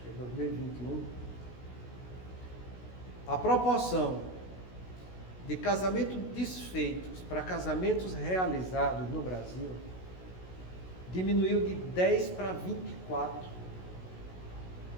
a proporção de casamentos desfeitos para casamentos realizados no Brasil diminuiu de 10 para 24.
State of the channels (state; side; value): late; right; 16 ms